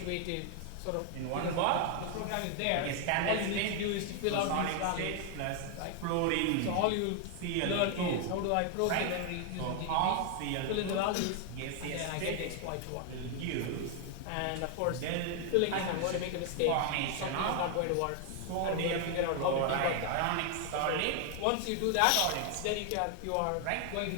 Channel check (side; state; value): both; different; correlation 0.00